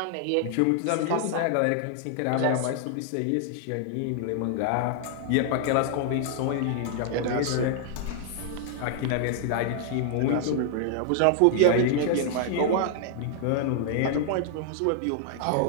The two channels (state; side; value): different; both; correlation 0.00